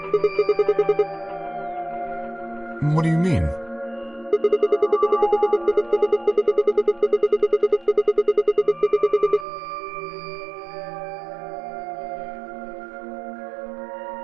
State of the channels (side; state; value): left; drops out; at 9.5 s